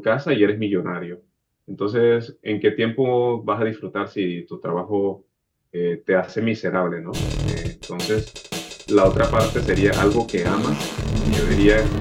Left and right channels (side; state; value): both; identical; correlation 1.00